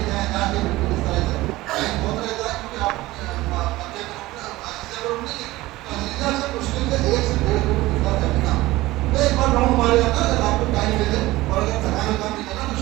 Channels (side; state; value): left; quieter; 18.4 dB